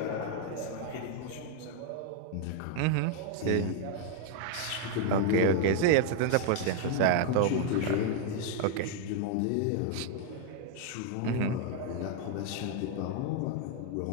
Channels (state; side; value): different; both; correlation 0.00